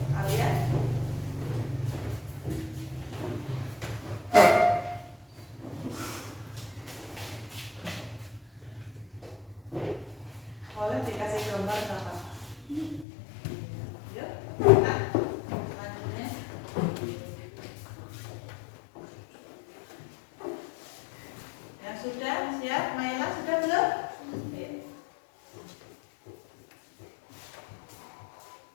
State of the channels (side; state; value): right; drops out; at 13.1 s